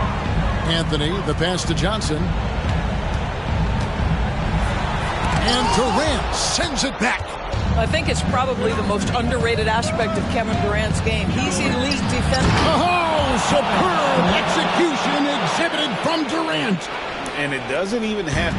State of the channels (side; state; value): both; identical; correlation 1.00